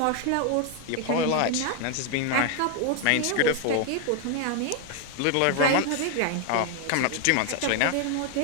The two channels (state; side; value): different; both; correlation 0.01